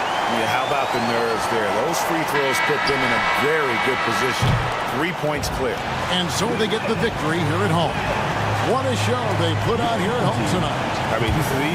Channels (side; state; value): both; identical; correlation 1.00